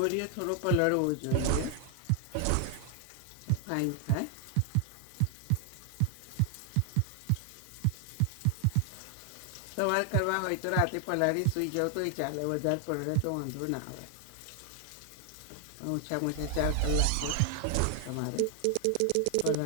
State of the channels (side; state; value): both; different; correlation 0.00